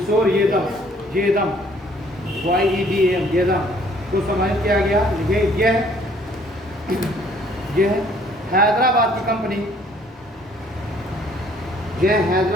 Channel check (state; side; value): normal; both; correlation 0.60